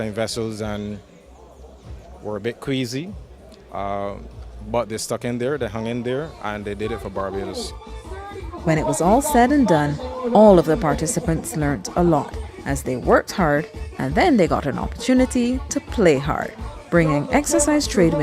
vessels and were a bit queasy, but they stuck in there, they hung in there, and they did it for Barbados. When it was all said and done, all of the participants learnt a lot as they worked hard, and then they got an opportunity to play hard, bringing Exercise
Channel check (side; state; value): both; identical; correlation 1.00